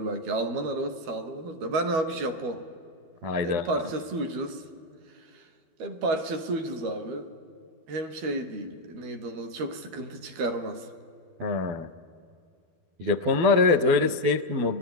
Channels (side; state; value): left; late; 12 ms